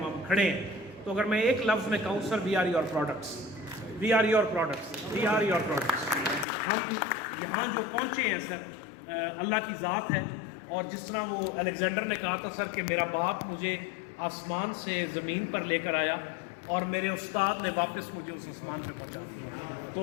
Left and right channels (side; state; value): right; drops out; at 6.5 s